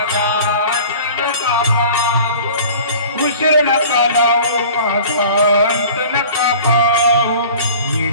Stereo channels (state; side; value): inverted; both; correlation -0.44